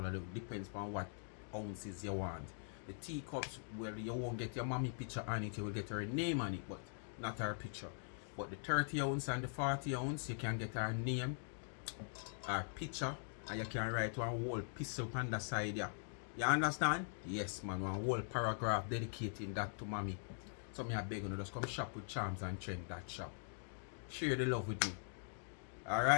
It depends on what ounces you want. The teacups, well, you won't get your mommy picture on it, you will get her name on it, but not her picture. But the 30 ounce and the 40 ounce, you can get her name, her picture, and you can write one whole piece up on the side there. You understand? Yes, man. One whole paragraph dedicating that to mommy. So me I beg you, just come shop with Charms and Trend, that shop. Share the love with me.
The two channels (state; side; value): silent; right; digital silence